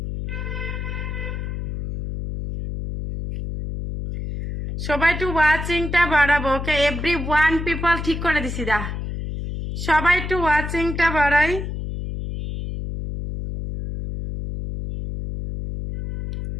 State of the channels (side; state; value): left; noise; hum, 5 dB below the sound